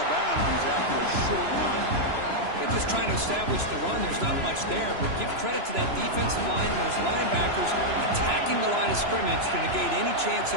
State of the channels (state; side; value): late; left; 3.0 ms